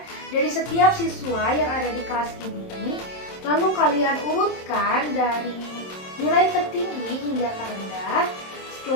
dari setiap siswa yang ada di kelas ini. Lalu kalian urutkan dari nilai tertinggi hingga terendah.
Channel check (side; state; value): right; late; 27 ms